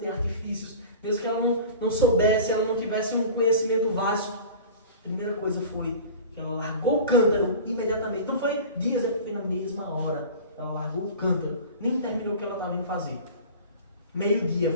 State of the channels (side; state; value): both; inverted; correlation -0.38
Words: artifícios, mesmo que ela não soubesse, ela não tivesse um conhecimento vasto, a primeira coisa foi que ela largou o cântaro imediatamente. Não foi dias, foi na mesma hora. Ela largou o cântaro, nem terminou o que ela estava indo fazer. Meio-dia